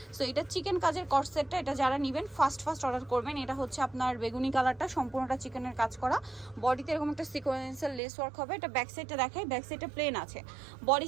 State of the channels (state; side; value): drops out; left; at 8.0 s